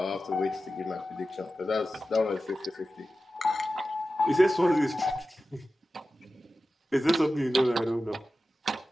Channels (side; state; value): both; normal; correlation 0.94